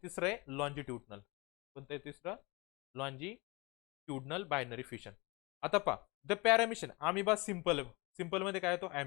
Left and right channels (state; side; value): quieter; right; 25.9 dB